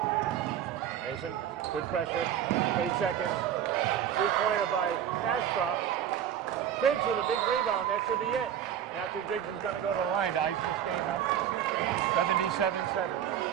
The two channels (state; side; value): quieter; left; 9.9 dB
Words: Mason, good pressure. 8 seconds. 3-pointer by Ashcroft. Griggs with a big rebound. That should be it. Matthew Griggs is going to go to the line to ice this game up. 77-70.